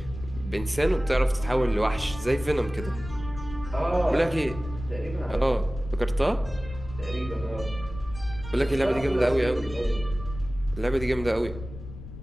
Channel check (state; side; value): noise; left; rumble, 12 dB below the sound